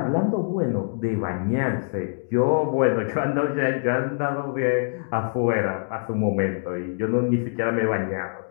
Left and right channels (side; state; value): right; silent; digital silence